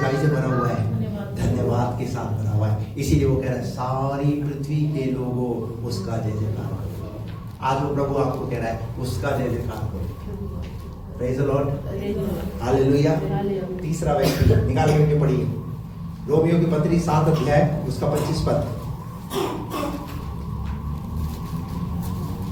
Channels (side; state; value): both; identical; correlation 1.00